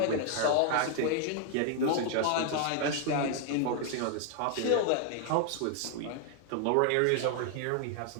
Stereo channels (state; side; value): different; both; correlation 0.00